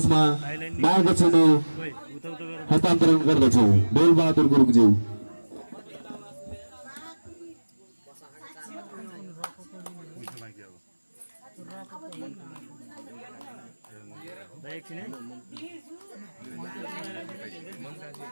मायाको चिनो हस्तान्तरण गर्दछौँ। बेलबहादुर गुरुङज्यू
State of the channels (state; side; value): inverted; both; correlation -1.00